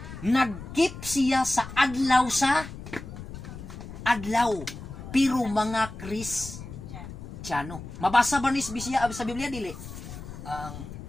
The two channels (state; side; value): noise; left; rumble, 11 dB below the sound